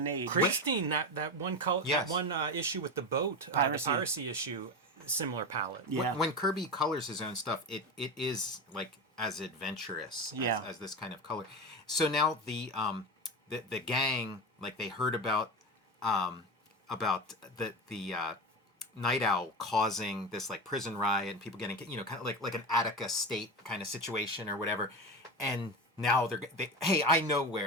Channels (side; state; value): both; normal; correlation 0.22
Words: age. Christine, that one color, Yes. that one issue with the boat, Piracy. the piracy issue, similar palette. Yeah. When Kirby colors his own stuff, it is like as adventurous as this kind of color. So now the gang, like they heard about the Night Owl causing this like prison riot and people getting kind of like an Attica state kind of situation or whatever, and now hey, I know